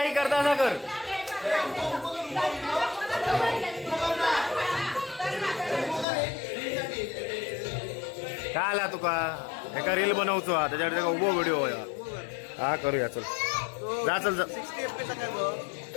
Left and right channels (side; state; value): right; drops out; at 6.1 s